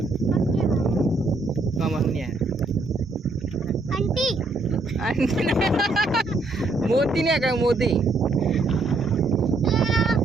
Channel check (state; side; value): quieter; left; 3.3 dB